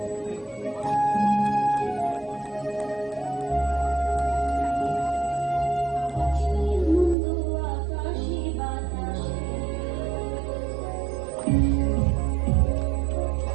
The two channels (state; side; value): drops out; left; at 7.2 s